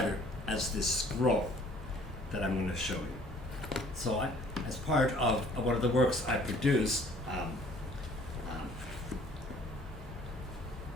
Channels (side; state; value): both; normal; correlation 0.55